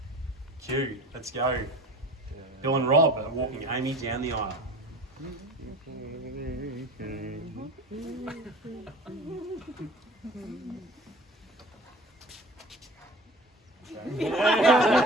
cue, let's go. Bill and Rob are walking Amy down the aisle.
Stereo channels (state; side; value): normal; both; correlation 0.41